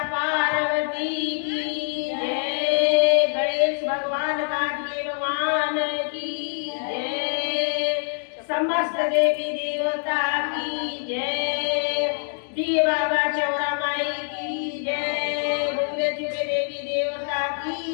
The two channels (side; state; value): right; silent; digital silence